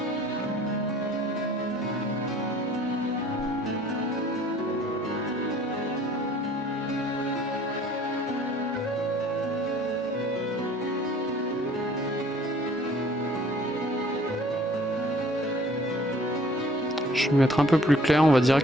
Je vais mettre un peu plus clair, on va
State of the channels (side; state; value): both; normal; correlation 0.54